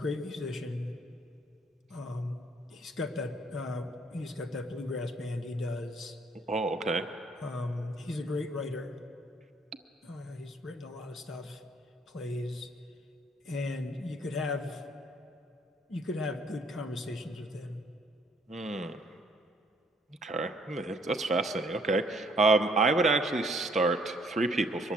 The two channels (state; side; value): normal; both; correlation 0.64